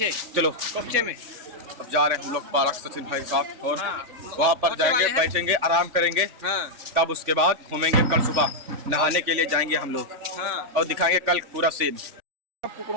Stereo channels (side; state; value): left; late; 3.5 ms